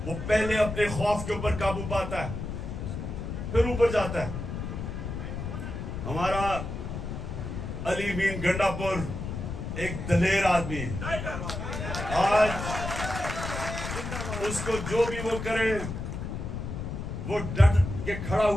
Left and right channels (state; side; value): noise; left; rumble, 5 dB below the sound